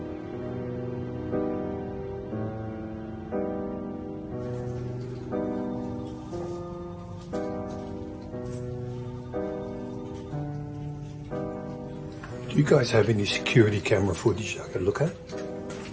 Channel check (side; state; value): both; identical; correlation 1.00